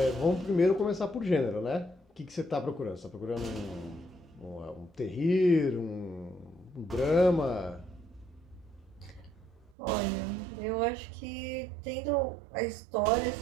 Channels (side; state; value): left; drops out; at 9.8 s